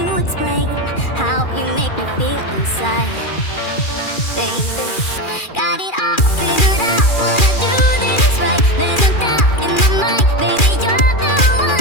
explain how you make me feel inside. Baby, got it all figured out, wanna do this right. There's no doubt in my mind, baby, you're the one.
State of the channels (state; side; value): late; right; 2.4 ms